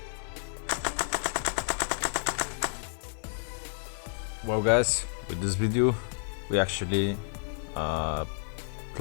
Well guys, with this video we actually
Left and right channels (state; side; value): silent; right; 57 dB below the other